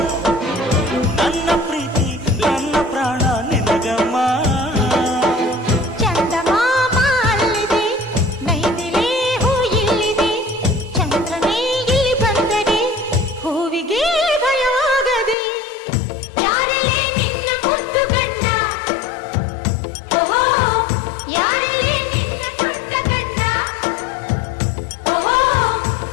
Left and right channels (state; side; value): drops out; right; at 15.4 s